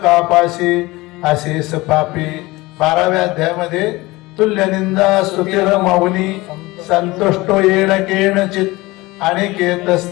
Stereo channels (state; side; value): quieter; right; 21.0 dB